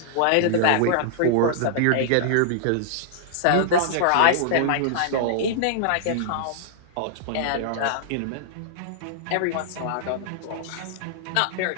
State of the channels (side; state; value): both; different; correlation -0.01